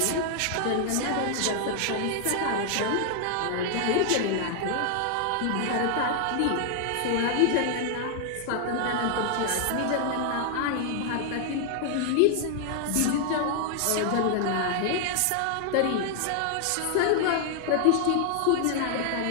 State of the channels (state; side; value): different; both; correlation 0.00